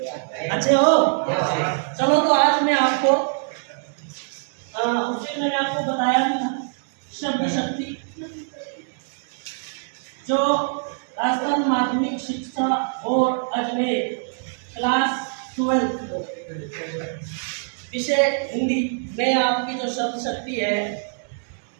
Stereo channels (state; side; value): silent; left; digital silence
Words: अच्छे हो? चलो, तो आज मैं आपको उसे मैंने आपको बताया था शब्द शक्ति, जो राजस्थान माध्यमिक शिक्षा बोर्ड अजमेर क्लास 12 विषय हिंदी में आपकी जो शब्द शक्ति है